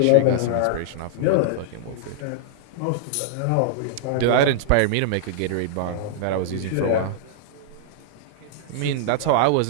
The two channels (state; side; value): different; both; correlation -0.01